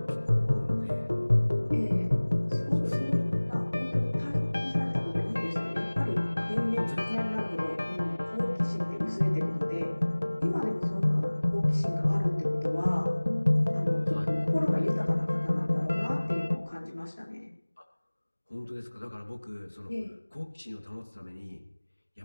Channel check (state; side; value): inverted; both; correlation -1.00